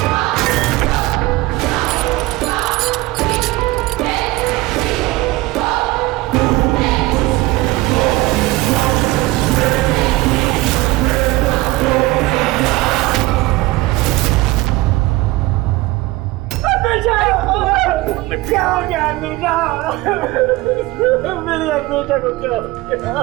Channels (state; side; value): quieter; left; 19.6 dB